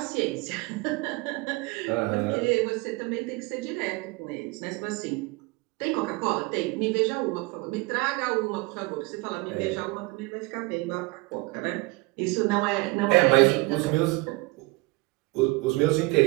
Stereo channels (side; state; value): left; quieter; 24.4 dB